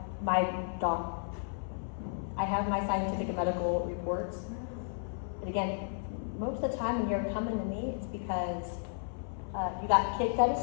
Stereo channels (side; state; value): right; silent; 55 dB below the other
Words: my doc. I have my scientific and medical reports. And again, most of the time when you're coming to me, it's because you got kicked out of